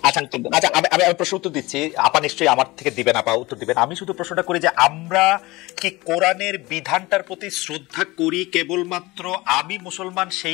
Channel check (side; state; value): right; quieter; 21.3 dB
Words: আচ্ছা, আমি প্রশ্ন উত্তর দিচ্ছি, আপা নিশ্চয়ই আমার থেকে দিবেন, আপা উত্তর দিবেন। আমি শুধু প্রশ্নটা করি যে আমরা কি কোরআনের বিধানটার প্রতি শ্রদ্ধা করি কেবলমাত্র আমি মুসলমান